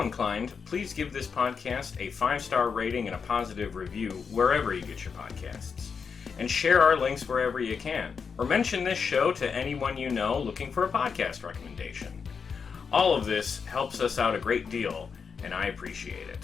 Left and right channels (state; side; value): quieter; right; 5.9 dB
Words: inclined, please give this podcast a 5-star rating and a positive review wherever you get your podcasts. And share our links wherever you can. Or mention this show to anyone you know looking for a podcast recommendation. All of this helps us out a great deal, and I appreciate